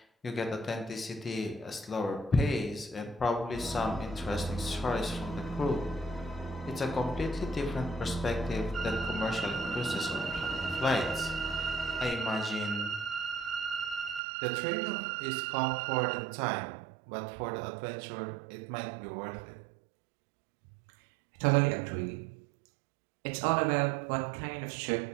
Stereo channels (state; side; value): drops out; left; at 14.2 s